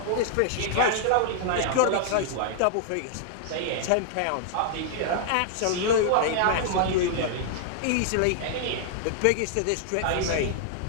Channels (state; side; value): different; both; correlation -0.01